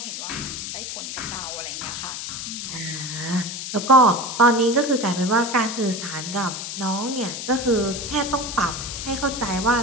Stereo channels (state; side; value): noise; left; hiss, 6 dB below the sound